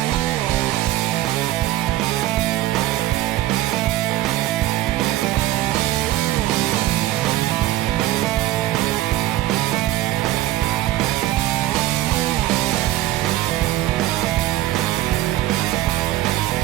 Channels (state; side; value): quieter; left; 15.4 dB